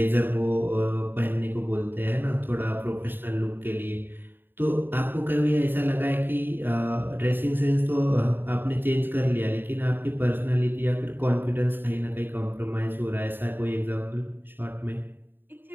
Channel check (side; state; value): left; late; 0.096 ms